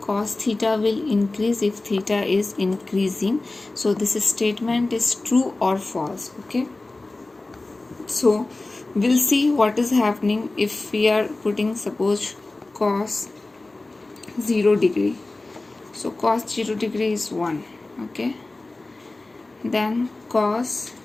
theta will increase if theta is increasing. So this statement is true or false, okay. So we'll see what is happening if we are putting suppose cos 0 degree. So cos 0 degree is 1, okay. Then cos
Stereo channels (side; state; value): right; quieter; 3.1 dB